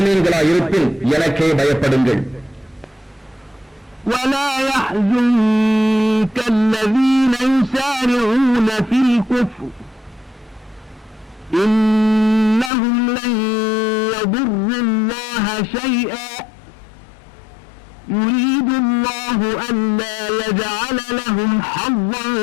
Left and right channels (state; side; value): drops out; right; at 12.7 s